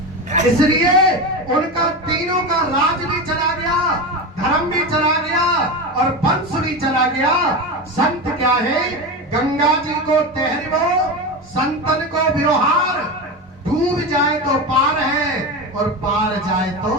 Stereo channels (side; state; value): both; normal; correlation 0.21